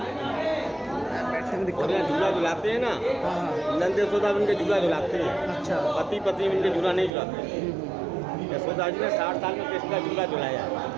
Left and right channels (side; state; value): left; drops out; at 7.1 s